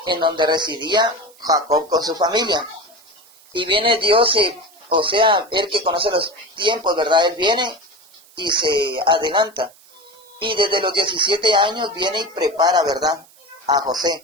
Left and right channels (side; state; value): right; noise; hiss, 27 dB below the sound